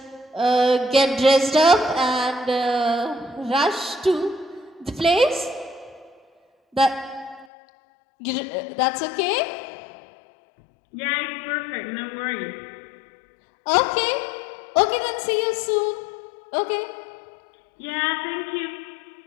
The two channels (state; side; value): drops out; right; at 7.5 s